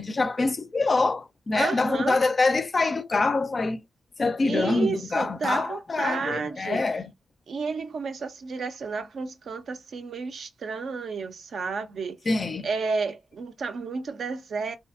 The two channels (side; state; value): both; normal; correlation 0.89